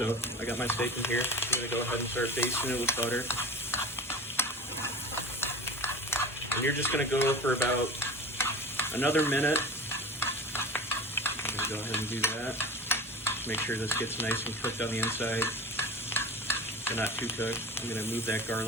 I got my steak in here. I'm gonna go ahead and start basting it with butter. And you're just gonna go for about another minute. I'm gonna go ahead and do that. Make sure this gets nice and cooked on the inside, but not too cooked. I'm gonna move that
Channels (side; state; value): both; normal; correlation 0.34